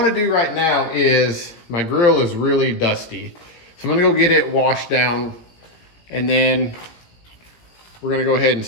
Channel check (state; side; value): late; right; 17 ms